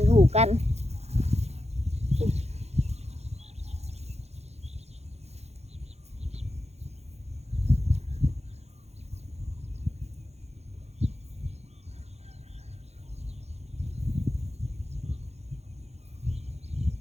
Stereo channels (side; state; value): left; late; 0.31 ms